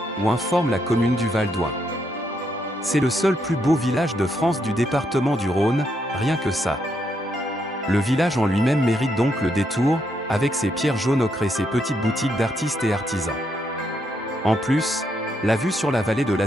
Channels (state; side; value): normal; both; correlation 0.78